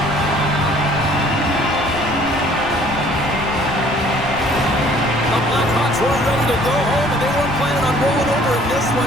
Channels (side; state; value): left; noise; rumble, 15 dB below the sound